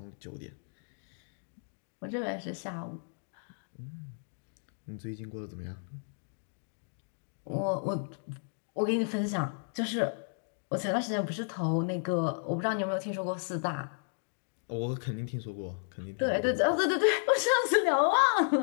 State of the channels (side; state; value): right; silent; digital silence